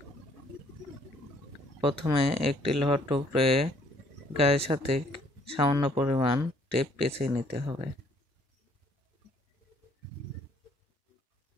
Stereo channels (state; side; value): normal; both; correlation 0.63